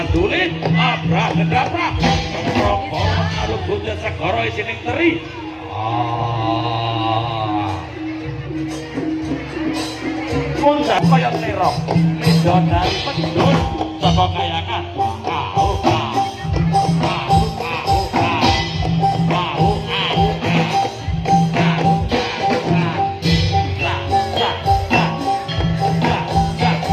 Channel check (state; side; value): identical; both; correlation 1.00